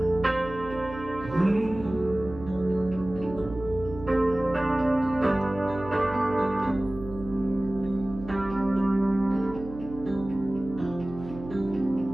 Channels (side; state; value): right; noise; hum, 13 dB below the sound